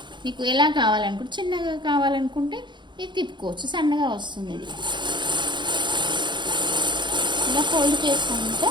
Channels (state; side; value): late; left; 0.22 ms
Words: మీకు ఎలా కావాలనుకుంటే, చిన్నగా కావాలనుకుంటే ఇది తిప్పుకోవచ్చు, సన్నగా వస్తుంది. ఇది ఇలా ఫోల్డ్ చేసుకుంటే